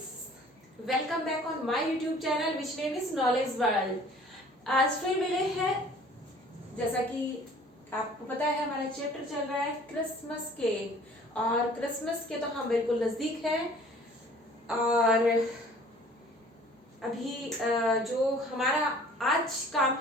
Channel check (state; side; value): normal; both; correlation 0.51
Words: Welcome back on my YouTube channel which name is Knowledge World. आज फिर मिले हैं, जैसा कि आपको पता है हमारा चैप्टर चल रहा है क्रिसमस केक और क्रिसमस के तो हम बिल्कुल नजदीक हैं और अभी जो हमारा आज काम